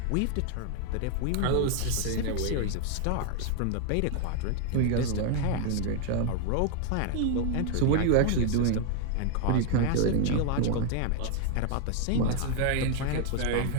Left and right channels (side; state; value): both; different; correlation 0.00